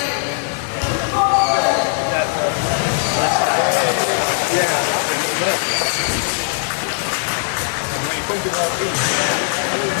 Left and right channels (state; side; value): silent; right; digital silence